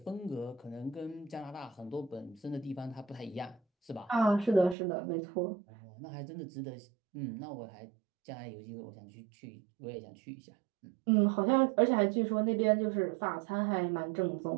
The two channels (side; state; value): left; drops out; at 4.8 s